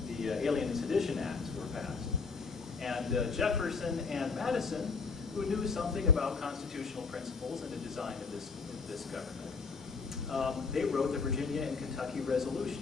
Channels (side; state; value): right; quieter; 4.8 dB